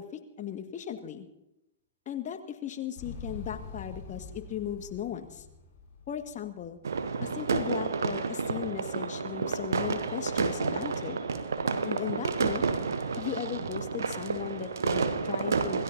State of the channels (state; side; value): inverted; both; correlation -0.56